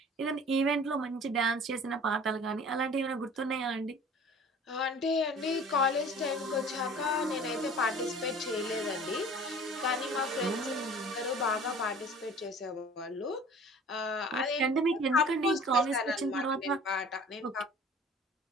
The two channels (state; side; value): normal; both; correlation 0.46